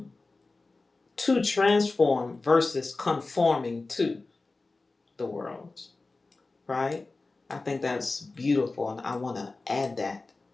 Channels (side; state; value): right; quieter; 3.5 dB